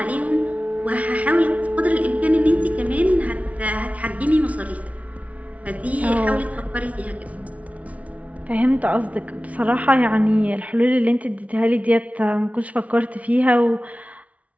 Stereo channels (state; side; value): late; left; 0.067 ms